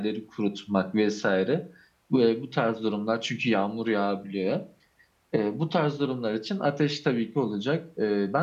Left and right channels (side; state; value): both; identical; correlation 1.00